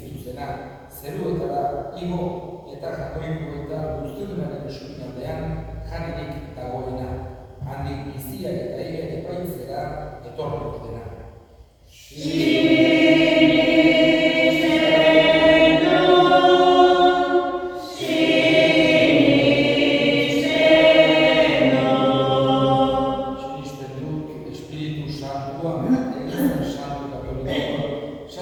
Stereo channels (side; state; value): both; identical; correlation 1.00